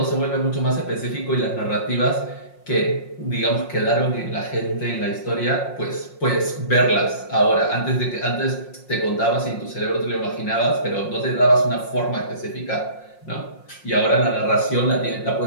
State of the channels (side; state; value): right; late; 5.6 ms